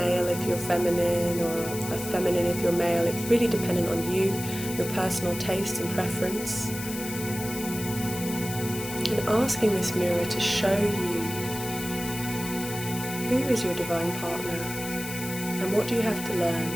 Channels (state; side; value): noise; left; hiss, 9 dB below the sound